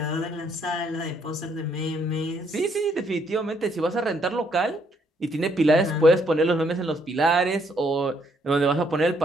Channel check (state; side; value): normal; both; correlation 0.70